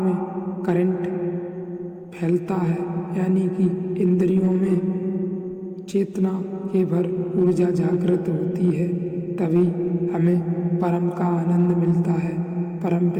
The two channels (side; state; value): both; identical; correlation 1.00